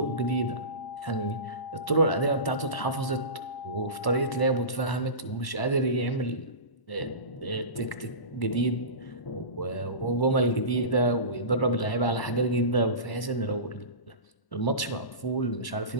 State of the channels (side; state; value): right; late; 1.1 ms